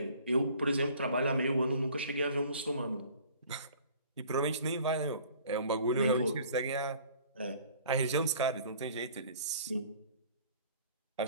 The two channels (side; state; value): both; inverted; correlation -0.52